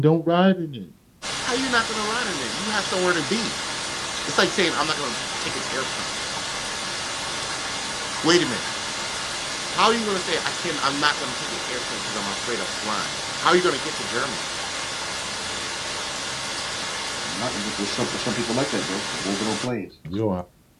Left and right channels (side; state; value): both; identical; correlation 1.00